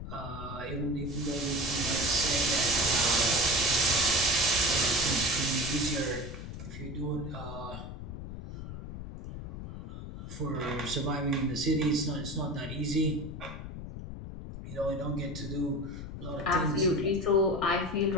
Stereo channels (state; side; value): noise; left; rumble, 9 dB below the sound